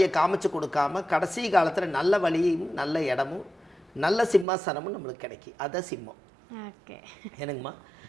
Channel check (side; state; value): left; drops out; at 4.5 s